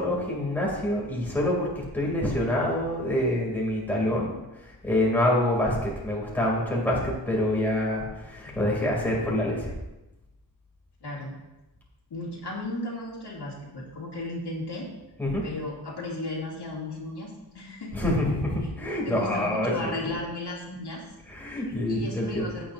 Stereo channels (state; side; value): normal; both; correlation 0.45